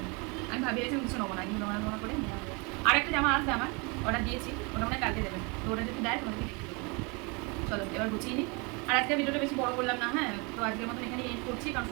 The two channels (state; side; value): quieter; left; 30.1 dB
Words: আমি ভাবিয়েছিলাম কিছু নেবো না, কিন্তু নোনা করে নেওয়া হবে। আর একটা জামা আসবে আমার, অর্ডার দিয়েছি, ওটা মনে কালকে দেবে, তো ওটা যদি দেয় তোমাকে দেখিয়ে দেবো। চলো এবার গুছিয়ে নিই। আর আজকে ভিডিওটা বেশি বড় করলাম না, হ্যাঁ, তো আজকের মতন এখানে এন্ড করছি, কারণ